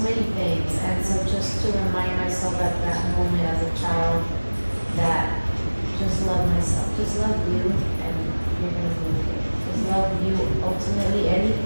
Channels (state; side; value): inverted; both; correlation -1.00